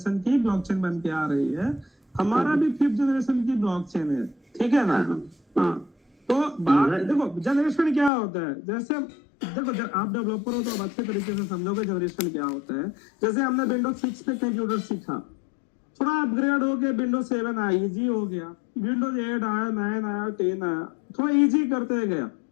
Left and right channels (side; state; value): right; drops out; at 8.1 s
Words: की ब्लॉकचेन बन के आ रही है। हमारा भी 5th जनरेशन की ब्लॉकचेन है, ठीक है ना? हाँ, तो बात देखो जनरेशन क्या होता है, जैसे देखो आप डेवलपर हो तो आप अच्छे तरीके से समझोगे जनरेशन क्या होता है। जैसे हमने विंडोज 6 पे कंप्यूटर सीखा, थोड़ा अपग्रेड हो गया, विंडोज 7 आया, इजी हो गया, विंडोज 8 आया, 9 आया, 10 आया, थोड़ा इजी करते गया।